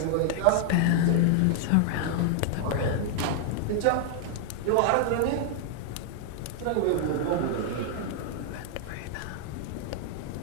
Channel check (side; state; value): both; different; correlation 0.00